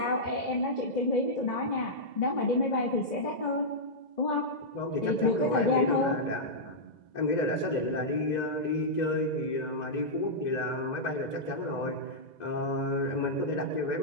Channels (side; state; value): right; late; 2.0 ms